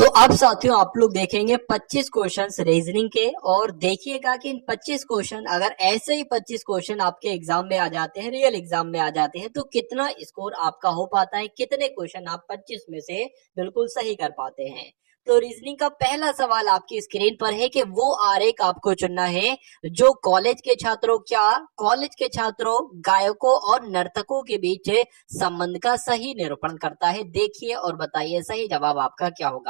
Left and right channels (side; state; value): left; silent; digital silence